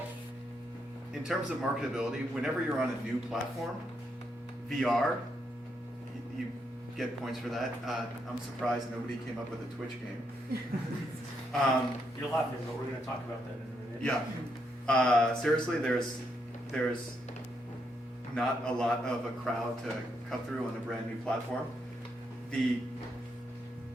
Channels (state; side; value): normal; both; correlation 0.78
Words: in terms of marketability, whenever you're on a new platform, VR, you get points for that. I'm surprised nobody came up with a Twitch game. You're laughing, but we're going to talk about that in a minute. Yeah. Seriously, there's not a lot of a crowd to cut through on a brand new platform. The